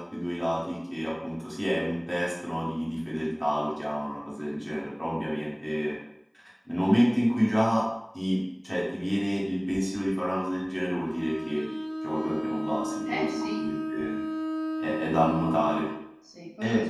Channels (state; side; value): identical; both; correlation 1.00